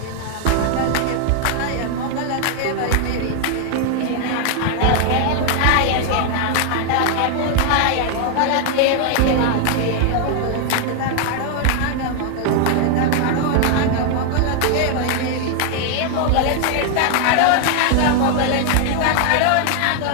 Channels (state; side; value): different; both; correlation 0.00